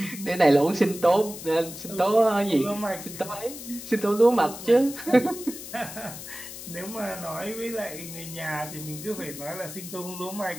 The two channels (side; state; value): left; noise; hiss, 12 dB below the sound